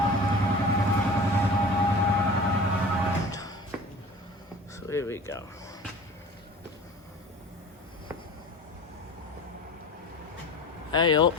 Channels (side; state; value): both; normal; correlation 0.40